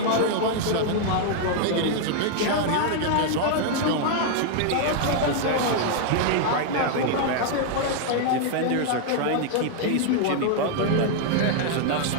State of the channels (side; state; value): both; different; correlation 0.00